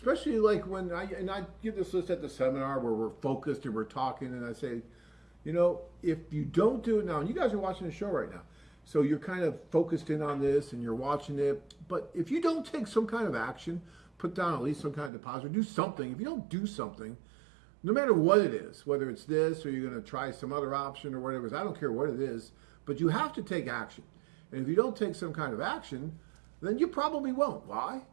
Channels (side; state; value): left; drops out; at 15.1 s